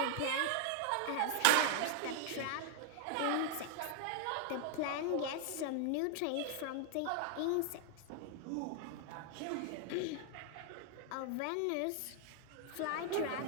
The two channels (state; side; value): different; both; correlation 0.00